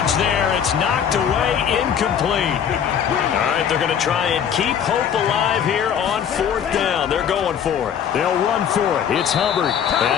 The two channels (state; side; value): quieter; right; 8.4 dB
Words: there. It's knocked away, incomplete. All right, they're going to try and keep hope alive here on 4th down. They're going for it. They'll run for it. It's Hubbard.